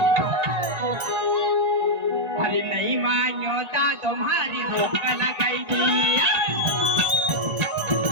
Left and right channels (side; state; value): left; late; 1.4 ms